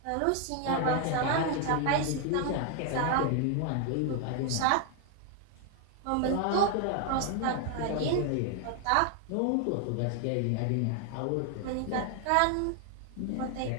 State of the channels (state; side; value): different; both; correlation 0.01